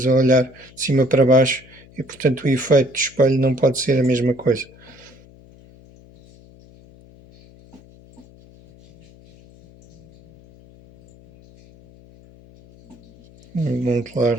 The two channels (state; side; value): noise; left; hum, 25 dB below the sound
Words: a olhar de cima para baixo e portanto o efeito do espelho não pode ser a mesma coisa. Um